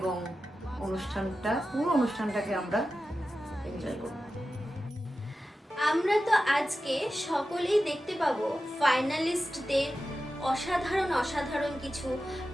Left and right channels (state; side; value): normal; both; correlation 0.93